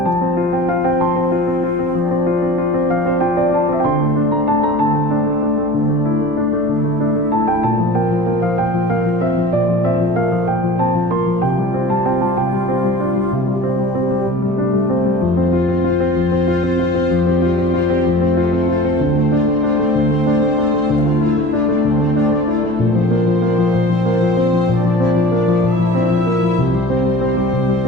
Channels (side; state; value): right; noise; hum, 18 dB below the sound